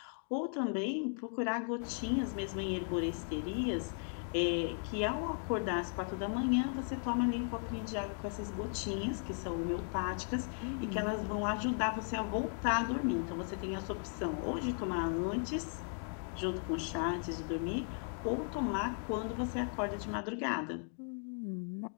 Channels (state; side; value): silent; right; 53 dB below the other